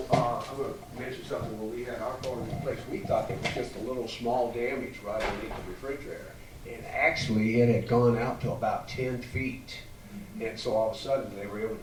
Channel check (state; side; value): identical; both; correlation 1.00